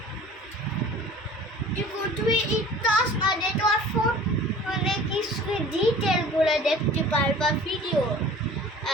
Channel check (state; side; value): normal; both; correlation 0.45